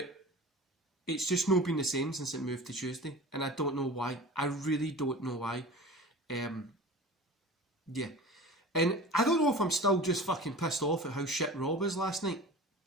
it's just not been the same since it moved to Tuesday, and I don't know why. I really don't know why. Yeah. And I don't know if I'm still just fucking pissed off at how shit Raw was last night.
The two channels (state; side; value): normal; both; correlation 0.36